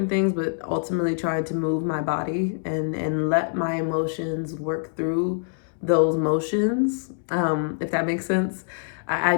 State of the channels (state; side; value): silent; right; 62 dB below the other